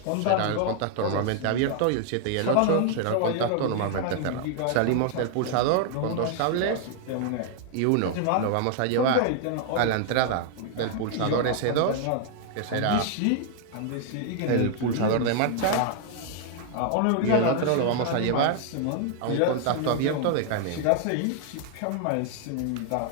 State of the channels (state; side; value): different; both; correlation 0.00